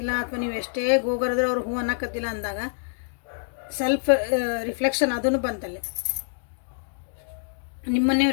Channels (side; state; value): right; silent; digital silence